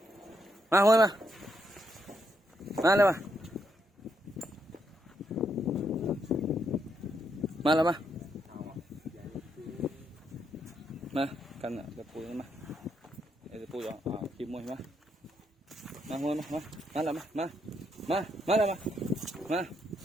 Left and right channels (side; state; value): both; normal; correlation 0.78